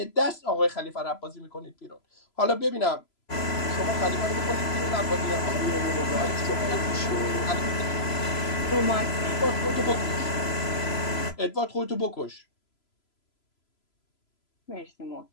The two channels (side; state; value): right; late; 3.0 ms